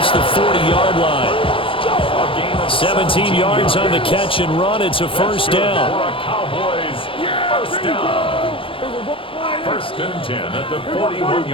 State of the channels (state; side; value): late; right; 0.26 ms